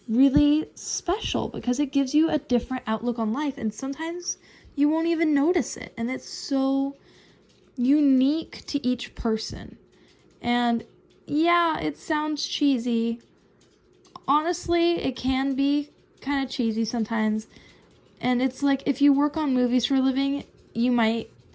really special, because it gives you a different outlook on life, and sometimes you won't even notice it. And it's so unique to each person. And yeah, it sounds cheesy. Honestly, it can be kind of cheesy sometimes. And it's like, if you work on movies for a living, you might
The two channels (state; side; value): identical; both; correlation 1.00